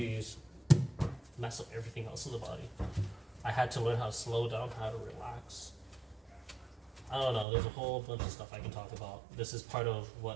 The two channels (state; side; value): drops out; left; at 7.5 s